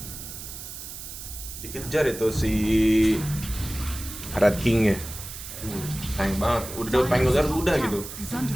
Dikejar itu si Red King-nya. Sayang banget, udah Pengulier udah gitu. Is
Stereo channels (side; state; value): right; noise; hiss, 11 dB below the sound